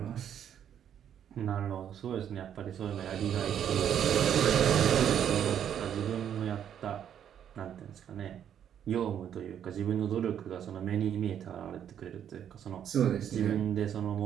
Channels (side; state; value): left; quieter; 9.3 dB